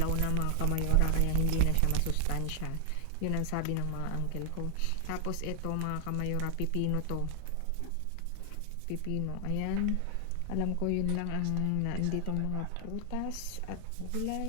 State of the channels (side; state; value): both; different; correlation 0.00